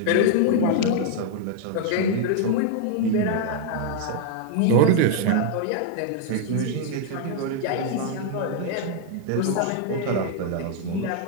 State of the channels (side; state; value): both; different; correlation 0.00